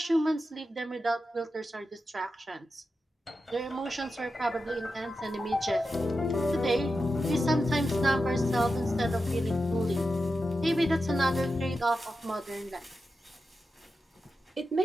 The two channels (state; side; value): normal; both; correlation 0.90